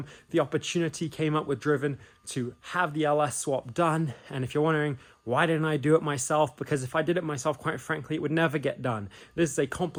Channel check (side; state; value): both; identical; correlation 1.00